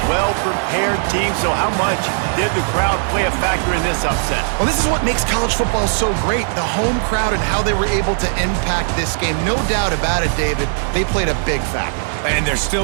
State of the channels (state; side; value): silent; left; digital silence